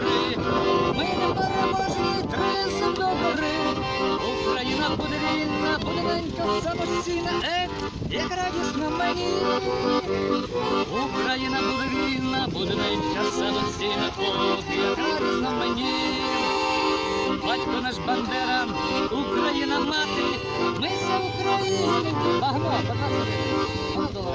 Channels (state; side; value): identical; both; correlation 1.00